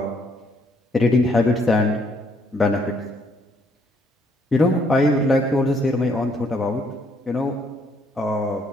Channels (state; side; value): normal; both; correlation 0.68